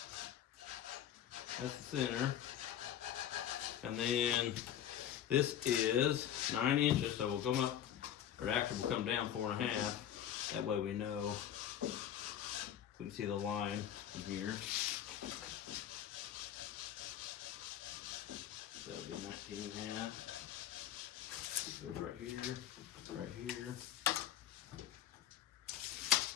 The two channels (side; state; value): right; quieter; 10.6 dB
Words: That's the center. And then this is 9 inches, so we'll come up, or actually we'll come down 4.5. That way we know. We can see the line from here. So it'll be 19.5. Goes right here, right here.